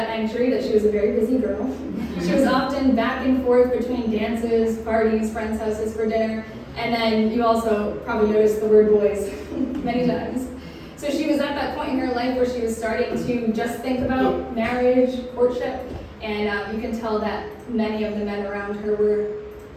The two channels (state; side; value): identical; both; correlation 1.00